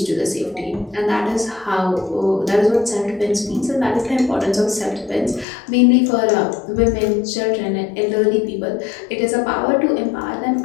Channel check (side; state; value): right; drops out; at 5.5 s